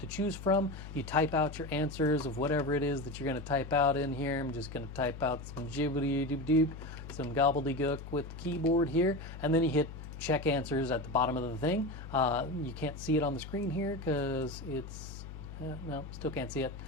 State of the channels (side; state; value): left; noise; hum, 11 dB below the sound